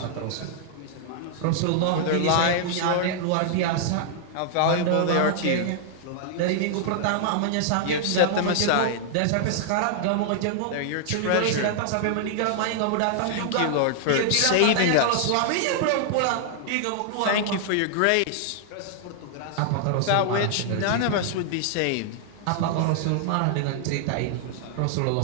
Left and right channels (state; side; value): different; both; correlation -0.01